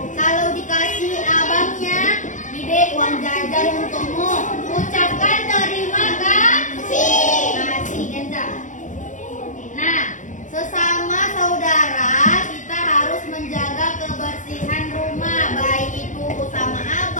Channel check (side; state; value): right; late; 0.36 ms